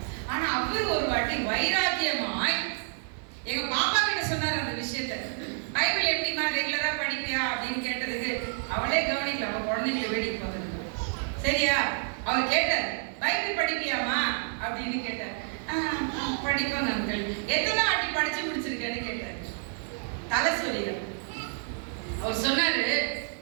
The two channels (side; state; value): left; silent; 59 dB below the other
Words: ஆனா அவர் ஒரு வாட்டி வைராக்கியமாய் எங்க பாப்பா கிட்ட சொன்னார் அந்த விஷயத்த. பைபிள் எப்படிமா ரெகுலரா படிப்பியா அப்படின்னு கேட்டதுக்கு அவளே கவனிக்கல, அவ குழந்தைங்களை வேடிக்கை பார்த்துருக்க. சரியா? அவர் கேட்டார், பைபிள் படிப்பியாமா அப்படின்னு கேட்டார். படிப்பாங்க அங்கிள். எத்தனை வாட்டி படிச்சு முடிச்சிருக்கேன்னு கேட்டார். தலை சொல்லிட. அவர் சொன்னாரு,